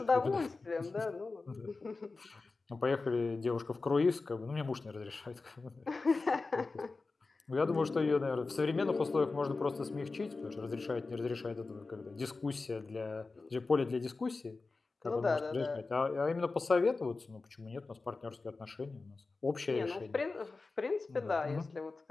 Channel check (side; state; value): right; quieter; 3.8 dB